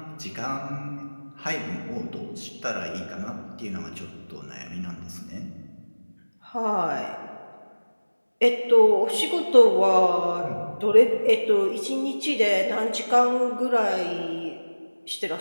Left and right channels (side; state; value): both; inverted; correlation -1.00